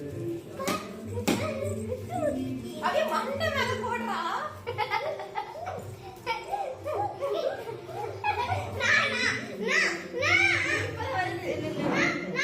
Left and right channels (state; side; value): identical; both; correlation 1.00